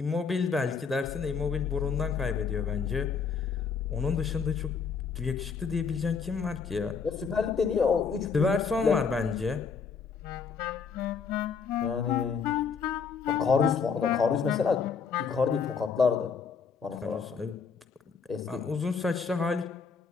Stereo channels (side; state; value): right; quieter; 5.7 dB